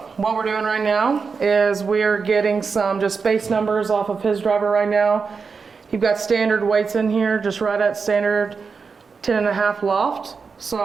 what we're doing right now is we're getting some just base numbers off of his driver right now. You've got standard weights in here, just right at standard 10.5 loft.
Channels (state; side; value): quieter; left; 5.2 dB